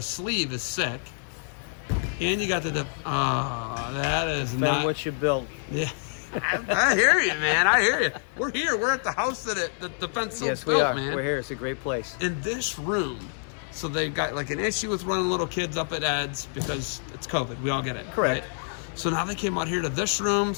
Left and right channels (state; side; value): silent; right; 60 dB below the other